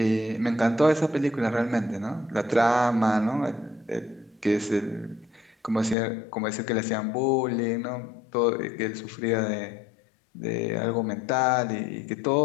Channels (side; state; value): right; drops out; at 6.0 s